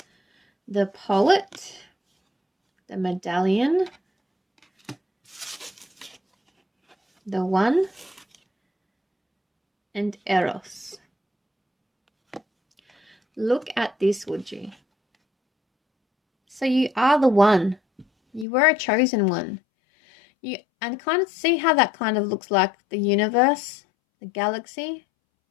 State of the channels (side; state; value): right; drops out; at 18.4 s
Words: The Poet, the Medallion, the One, and Eros. Look at this, would you? So you are the one. You were a chosen one. And kind of see how that kind of looks like the universe, the galaxy.